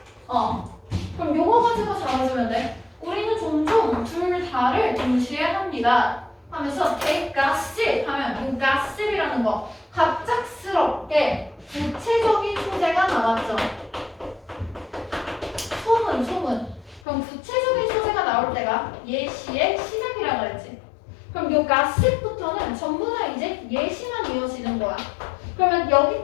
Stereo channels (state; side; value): drops out; right; at 17.0 s